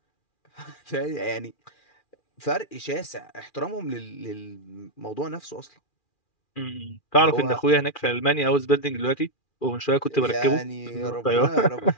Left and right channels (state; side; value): late; right; 2.4 ms